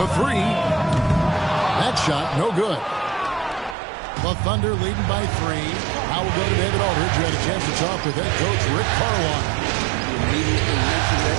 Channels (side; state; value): left; drops out; at 3.8 s